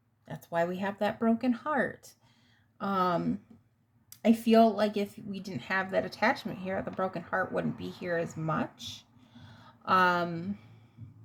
that's why we have that broken heart. I feel like if we didn't have that attachment here, the broken heart wouldn't be here as much.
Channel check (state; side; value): identical; both; correlation 1.00